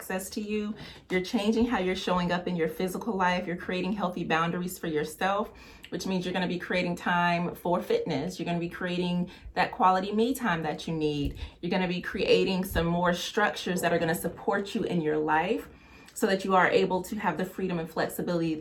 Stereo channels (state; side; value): identical; both; correlation 1.00